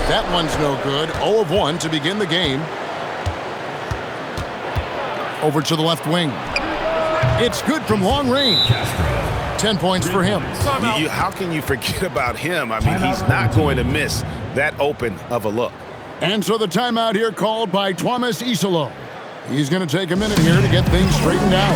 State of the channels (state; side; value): identical; both; correlation 1.00